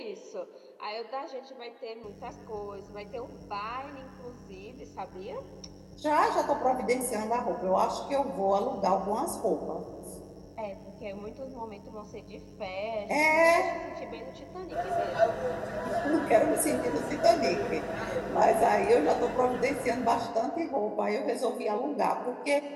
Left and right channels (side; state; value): both; identical; correlation 1.00